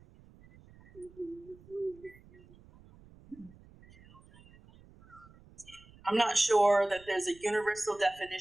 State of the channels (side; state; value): right; noise; rumble, 24 dB below the sound